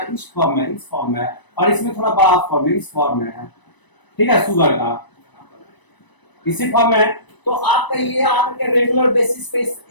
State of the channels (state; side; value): late; right; 1.0 ms